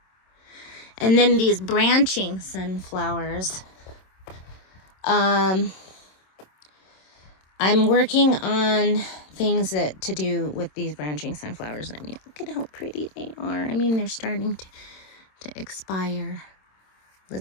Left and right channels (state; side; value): late; right; 27 ms